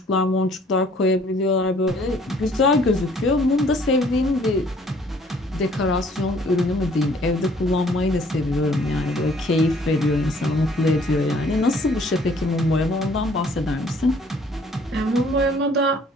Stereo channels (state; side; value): normal; both; correlation 0.59